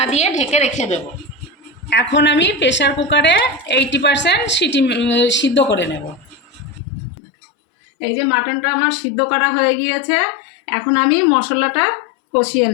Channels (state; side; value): drops out; right; at 6.8 s